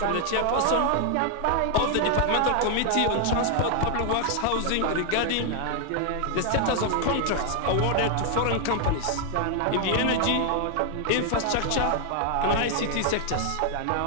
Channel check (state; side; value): different; both; correlation 0.00